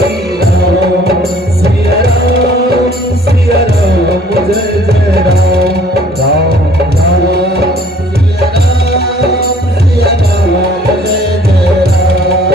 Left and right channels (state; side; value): normal; both; correlation 0.55